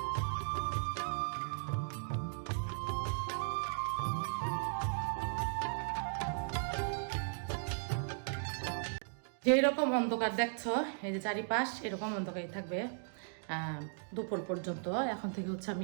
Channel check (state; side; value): silent; left; digital silence